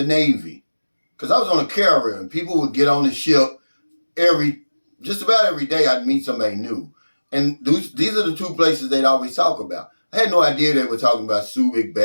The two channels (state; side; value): inverted; both; correlation -1.00